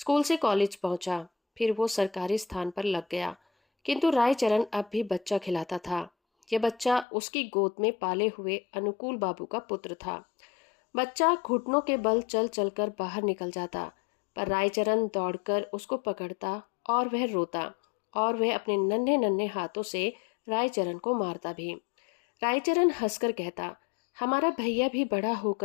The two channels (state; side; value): drops out; right; at 7.1 s